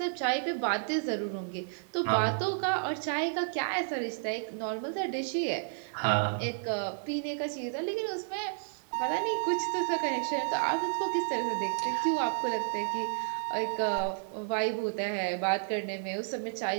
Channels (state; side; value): silent; left; digital silence